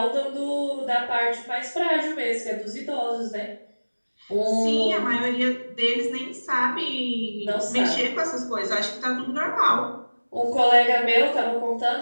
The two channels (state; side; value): inverted; both; correlation -1.00